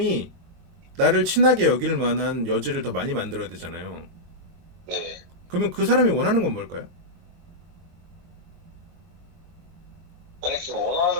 나를 친하게 여길 만한 여지를 더 많이 만들어야 되잖아요. 네. 그러면 그 사람이 원하는 건 뭘까요? 아니 그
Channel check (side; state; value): left; late; 22 ms